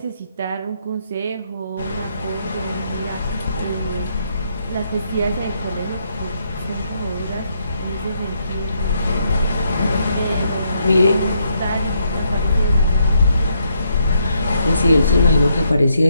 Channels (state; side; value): inverted; both; correlation -0.76